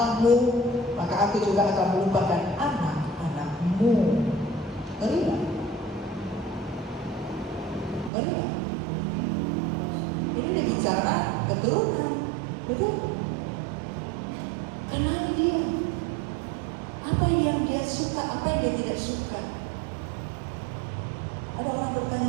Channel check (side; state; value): left; drops out; at 8.1 s